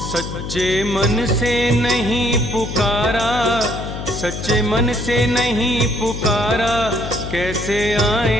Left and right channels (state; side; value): noise; left; hum, 7 dB below the sound